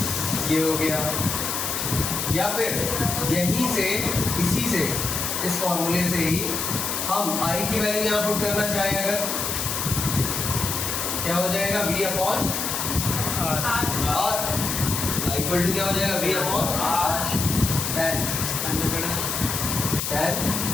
ये हो गया। या फिर यहीं से, इसी से, इस फॉर्मूले से ही हम I की वैल्यू यहाँ पुट करना चाहें अगर, क्या हो जाएगा v upon R r equal to क्या हो जाएगा v upon r tan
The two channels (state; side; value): noise; left; hiss, 2 dB below the sound